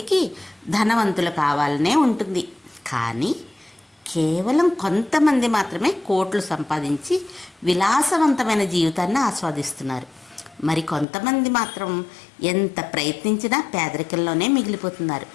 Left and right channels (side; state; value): right; drops out; at 11.1 s